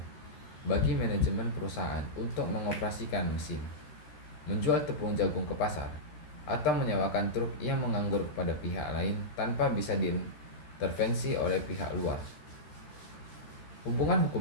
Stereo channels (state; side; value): late; right; 13 ms